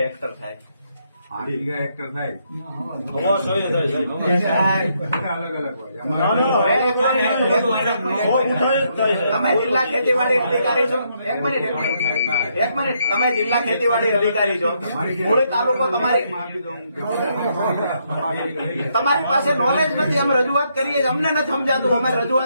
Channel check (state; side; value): inverted; both; correlation -0.75